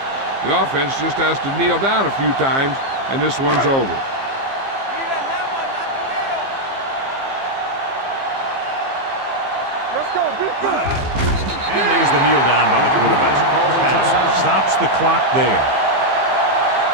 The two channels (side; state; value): left; late; 15 ms